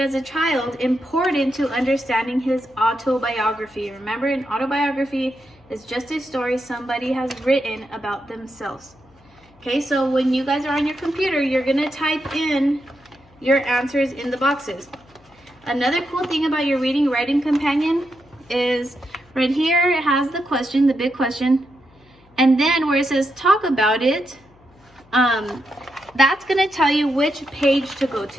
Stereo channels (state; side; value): noise; left; hum, 30 dB below the sound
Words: a child important to understanding his autobiography? Remember, an autobiography is just a story somebody has written about themselves. Okay, so when you guys are on your computer, you're going to type in your answers in the boxes. Another cool thing about your reading writing companion is right here it has the question, the big question, and then where it says talk about it, that's going to tell you which page to go